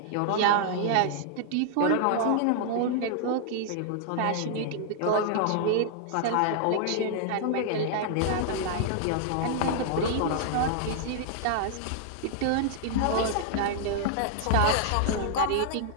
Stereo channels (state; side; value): different; both; correlation -0.01